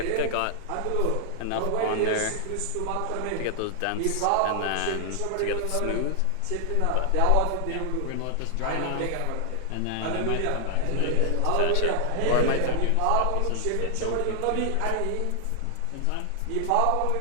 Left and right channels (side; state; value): both; different; correlation 0.00